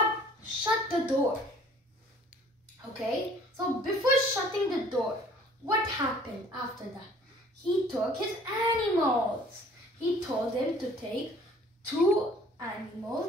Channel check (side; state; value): both; normal; correlation 0.53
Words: shut the door. Okay, so before shutting the door, what happened after that? He took his animals. He told him to take